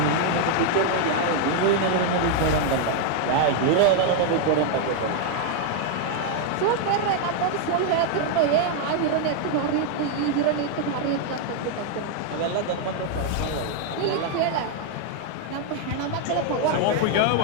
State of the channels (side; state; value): both; different; correlation 0.00